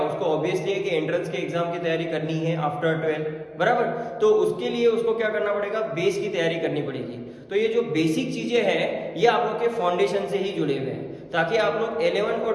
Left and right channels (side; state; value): both; identical; correlation 1.00